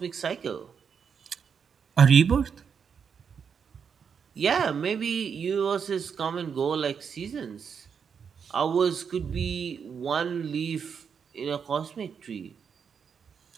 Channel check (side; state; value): left; quieter; 6.7 dB